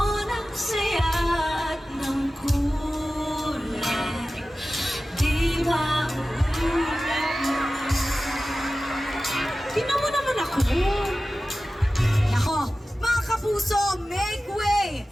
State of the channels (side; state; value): both; normal; correlation 0.95